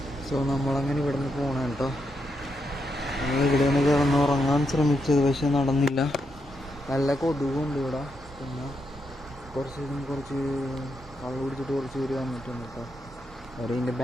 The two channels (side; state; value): both; normal; correlation 0.82